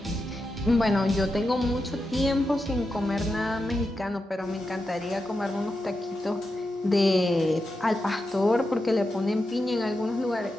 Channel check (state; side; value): normal; both; correlation 0.88